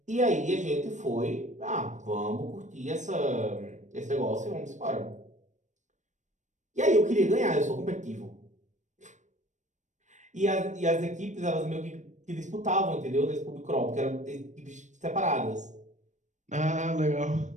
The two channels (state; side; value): late; left; 0.35 ms